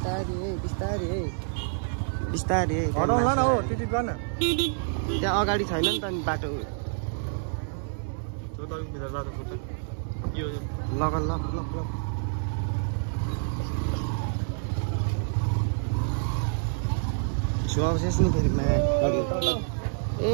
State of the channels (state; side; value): silent; left; 60 dB below the other